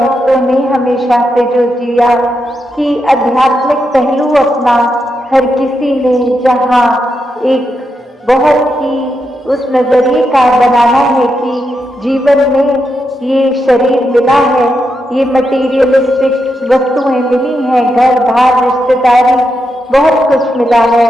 ने हमेशा से जो जिया कि आध्यात्मिक पहलू अपना हर किसी ने जहाँ एक बहुत ही उस नजरिए का बनाना है कि जीवन में ये शरीर मिला है ये मटीरियलिस्टिक वस्तुएं मिली हैं, घर बार रिश्तेदारी बहुत कुछ मिला है,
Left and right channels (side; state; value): both; normal; correlation 0.84